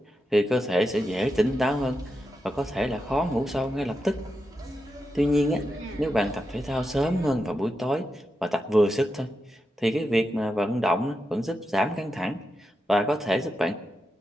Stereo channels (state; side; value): normal; both; correlation 0.87